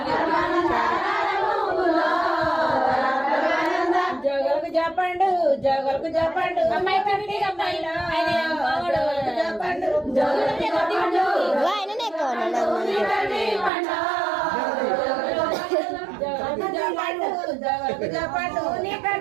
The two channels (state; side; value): drops out; left; at 13.7 s